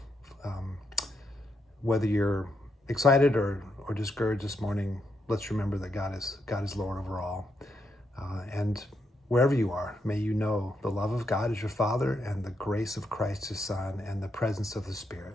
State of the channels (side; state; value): both; normal; correlation 0.81